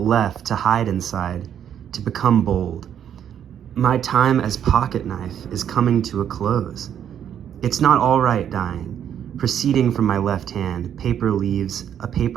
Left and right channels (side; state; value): left; quieter; 9.4 dB